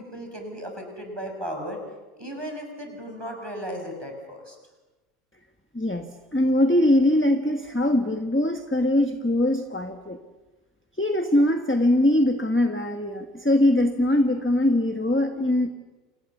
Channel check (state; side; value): normal; both; correlation 0.69